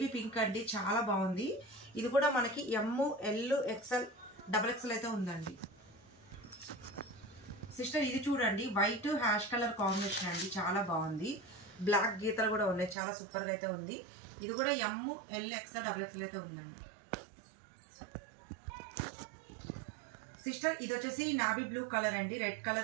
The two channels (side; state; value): left; drops out; at 13.0 s